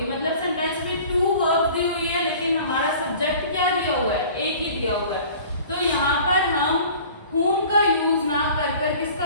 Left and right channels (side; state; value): both; inverted; correlation -0.46